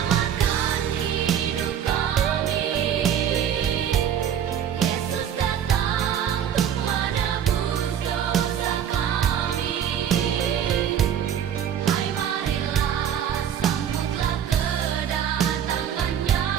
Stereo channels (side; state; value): left; quieter; 9.2 dB